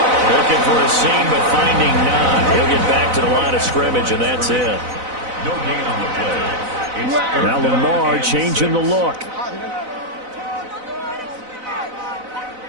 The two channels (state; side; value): late; left; 4.0 ms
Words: Looking for a seam, but finding none. He'll get back to the line of scrimmage, and that's it. No gain on the play. Now Lamar changing the look.